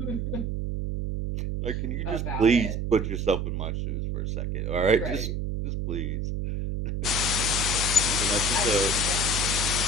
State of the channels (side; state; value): right; noise; hum, 1 dB below the sound